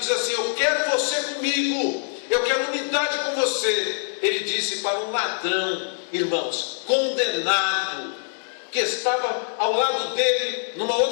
assim, eu quero você comigo, eu quero unidade com você. Ele disse para um ladrão, irmãos, condenado, que estava ao lado dele numa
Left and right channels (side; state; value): right; silent; digital silence